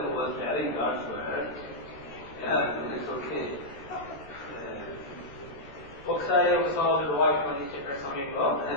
was carrying God's word, it's okay. ఒకసారి ఒక సహోదరుడు వాక్యం అందించే సమయంలో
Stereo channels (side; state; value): right; late; 14 ms